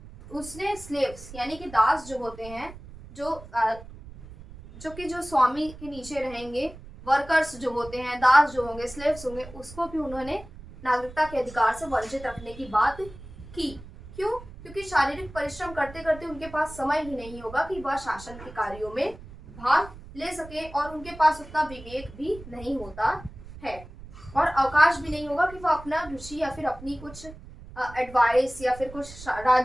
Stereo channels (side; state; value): right; noise; rumble, 16 dB below the sound